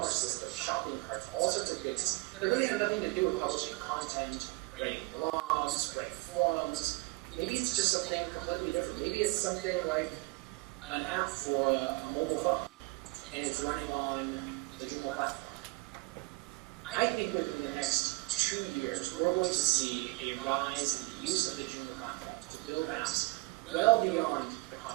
systems, shopping carts, all sorts of things that really have nothing to do with publishing content, writing blogs, writing forums. Maybe it's just something completely different. Maybe it's something like an app for a mobile phone, and it's running on the Joomla platform. I think within the next 2 years, we're going to see a rise in the use of the Joomla platform to build apps well beyond the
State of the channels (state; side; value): quieter; left; 25.6 dB